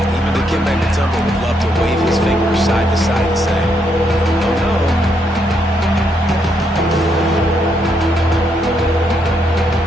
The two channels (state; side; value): normal; both; correlation 0.76